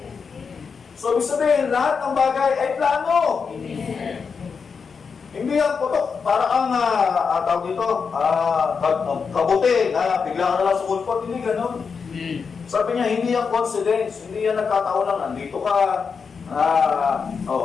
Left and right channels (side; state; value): right; quieter; 5.7 dB